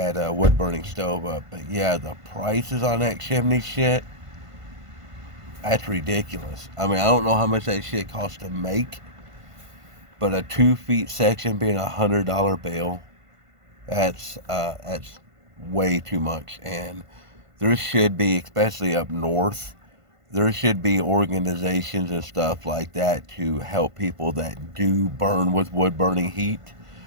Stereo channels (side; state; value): left; late; 1.5 ms